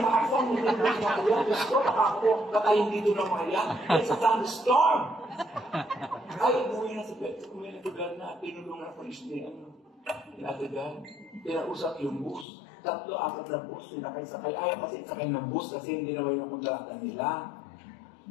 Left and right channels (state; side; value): drops out; right; at 12.5 s